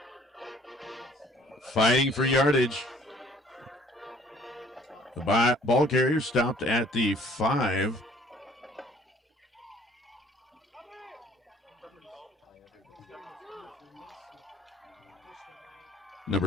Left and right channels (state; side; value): normal; both; correlation 0.57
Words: Fighting for yardage. The ball carrier stopped at the 5.